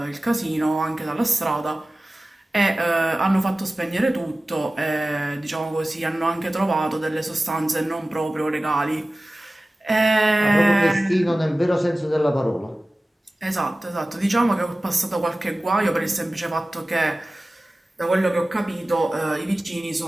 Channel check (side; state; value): both; normal; correlation 0.97